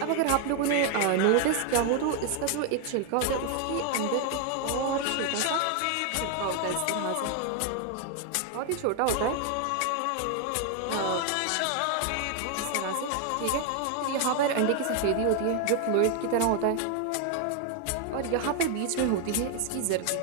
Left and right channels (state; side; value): different; both; correlation 0.00